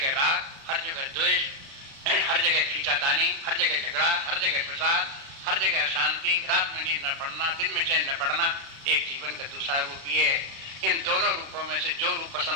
राग, हर जगह द्वेष, हर जगह खींचातानी, हर जगह झगड़ा, हर जगह प्रसाद, हर जगह अशांति, रात में नींद न पड़ना, दिन में चैन न पड़ना, एक जीवन का दूसरा रूप ये है। इन दोनों रूपों में से जो रूप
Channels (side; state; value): left; late; 36 ms